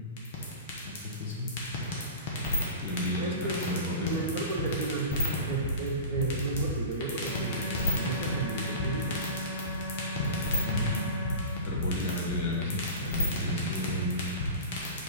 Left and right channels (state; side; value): inverted; both; correlation -0.32